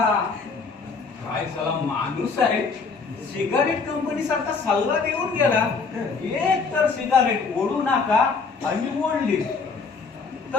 काय साला माणूस आहे. सिगारेट कंपनी सारखा सल्ला देऊन गेला. एक तर सिगारेट ओढू नका आणि ओढली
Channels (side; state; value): right; quieter; 4.8 dB